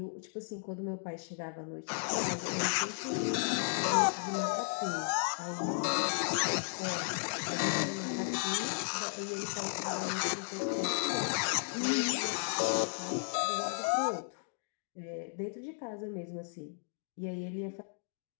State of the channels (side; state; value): right; silent; digital silence